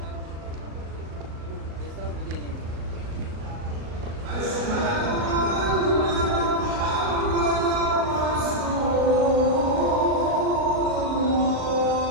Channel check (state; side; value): late; left; 37 ms